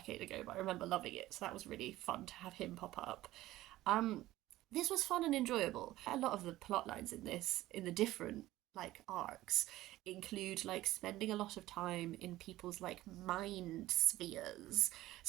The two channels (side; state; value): left; quieter; 16.1 dB